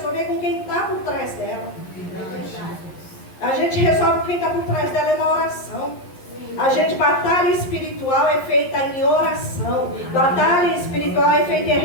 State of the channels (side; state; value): right; late; 11 ms